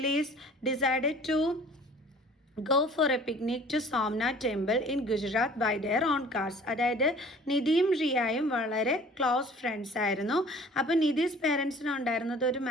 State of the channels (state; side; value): normal; both; correlation 0.49